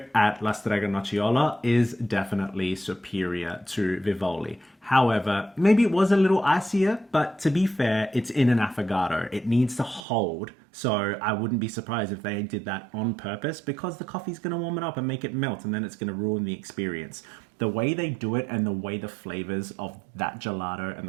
at La Strega Nocciola is definitely superior to Vivoli. However, maybe it was a little icier, but to be fair, it's in an affogato. It needs to hold, so I wouldn't be surprised if they did that on purpose because the coffee's going to warm it up and make it melt, and then it's going to ruin the experience. The way they do it and the way the flavors of that gelato and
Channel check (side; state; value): left; drops out; at 10.0 s